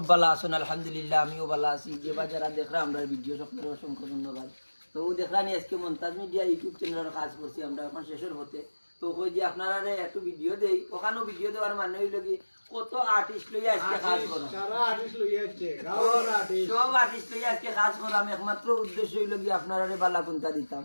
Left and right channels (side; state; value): both; inverted; correlation -1.00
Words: ভালো আছেন। আলহামদুলিল্লাহ আমিও ভালো আছি। যে বা যারা দেখরা আমরা ভিডিও সকলের অসংখ্য ধন্যবাদ। তো দেখলানি আজকে মন্তাজ মিডিয়া ইউটিউব চ্যানেলের কাজ করছি আমরা এখন শেষের হতে। তো কই যে আপনারা একটু ভিডিও দেই, ওখানেও ভিডিও দেওয়ার মানে হইল কি কত আর্টিস্ট লইয়া আজকে কাজ করো, সারা আর্টিস্ট লইয়া আসছে গাওয়ার আর্টিস্ট সব আর্টিস্ট লইয়া আজকে কাজ করাম। একমাত্র উদ্দেশ্য হইল কি আপনারা বালা কুন্তা দিতাম,